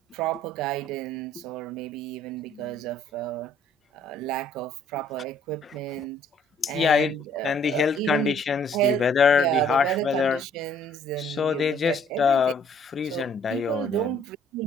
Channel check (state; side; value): normal; both; correlation 0.60